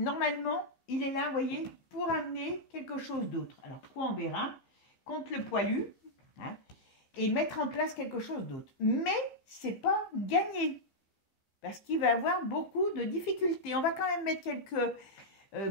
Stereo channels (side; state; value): right; late; 15 ms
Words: il est là, vous voyez, pour amener quelque chose d'autre. Alors, quoi on verra? contre le poilu, hein, et mettre en place quelque chose d'autre. Mais c'est pas gagné, parce qu'il va avoir beaucoup de difficultés. On va quand même mettre quelques